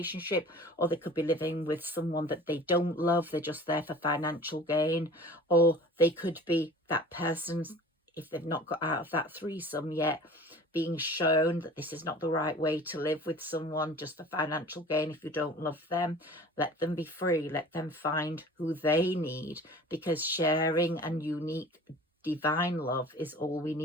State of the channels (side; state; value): both; normal; correlation 0.44